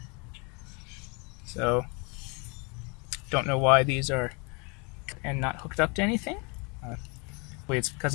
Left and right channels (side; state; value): right; quieter; 31.6 dB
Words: So, don't know why these are and not hooked up to anything. It's